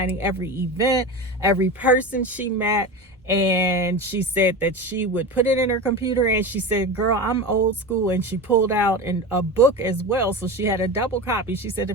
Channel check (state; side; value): normal; both; correlation 0.26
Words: every event, every person she met. And she said that she would put it in her computer, and she said, girl, I'm old school. And she pulled out a book as well. So she had a double copy. She said,